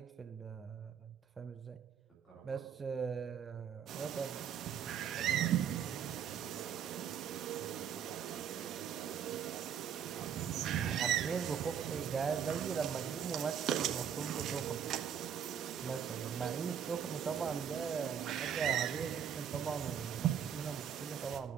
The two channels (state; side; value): quieter; left; 8.3 dB